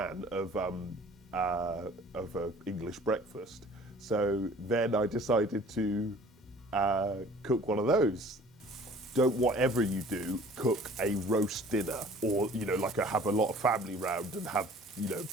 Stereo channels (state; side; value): normal; both; correlation 0.50